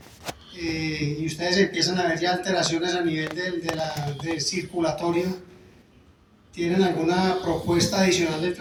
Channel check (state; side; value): identical; both; correlation 1.00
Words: y ustedes empiezan a ver ya alteraciones a nivel del circulatorio, ¿tienen alguna propuesta adicional de